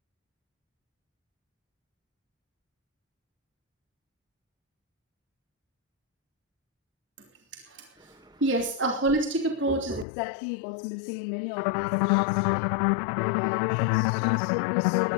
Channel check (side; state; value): right; drops out; at 10.1 s